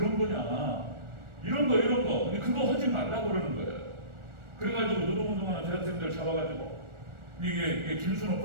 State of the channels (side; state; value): left; late; 1.4 ms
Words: 거냐. 이런 거. 근데 그거 하지 말라고 그러는 거예요. 그래가지고 노동운동하는 대학생들 잡아가지고, 이게 김순호